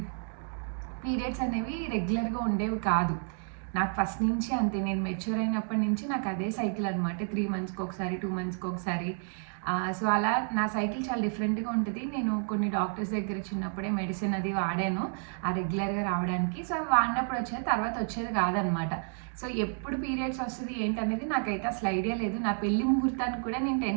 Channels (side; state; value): left; silent; 57 dB below the other